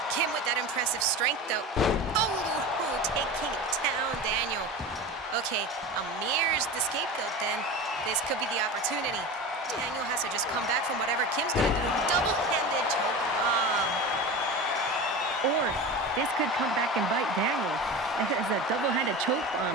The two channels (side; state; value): both; normal; correlation 0.29